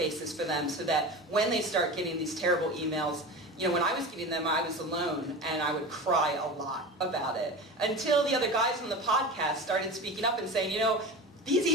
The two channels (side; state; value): both; normal; correlation 0.30